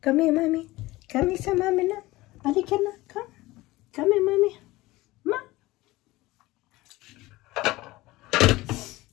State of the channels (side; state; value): right; quieter; 19.3 dB